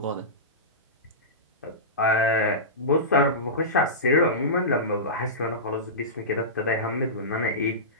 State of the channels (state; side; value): normal; both; correlation -0.19